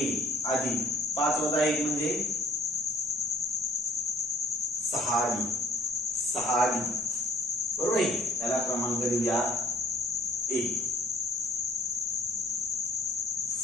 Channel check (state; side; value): normal; both; correlation 0.58